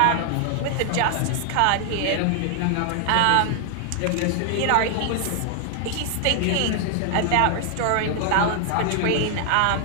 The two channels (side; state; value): both; different; correlation 0.00